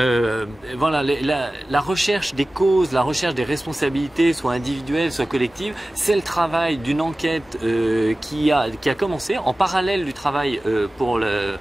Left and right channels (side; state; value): both; normal; correlation 0.96